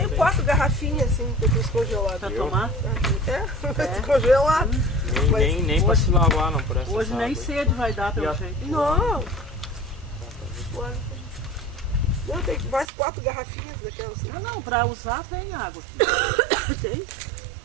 tem. 4 garrafinhas assim, que eu fiz congelado. Pra Eu? tomar. É, descongelado. Nem pra se lavar, não, por essa Hoje nem água aí. sede vai dar E pelo a- jeito. Não. Não, tem mais 4 garrafinhas daquelas assim. Não, pra usar tem água aqui. Tem?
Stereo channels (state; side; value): drops out; left; at 12.9 s